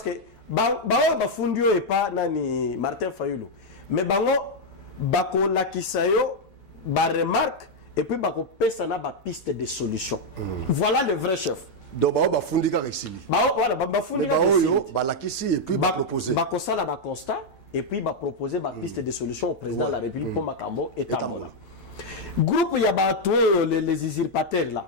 que bao bafundio et pas nani Martin Fayulu mais bango bako lakisayo ba remarque et puis bako pesa na ba piste de solution voilà le vrai chef donc bao bafundika resili voilà bafundika resili ba lakisi et puis ba proposer bako sala ba constat et puis ba proposer ba piste de solution au président de la République pour makambo et tambola groupe ya bato les usurpateurs là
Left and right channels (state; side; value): late; right; 9.0 ms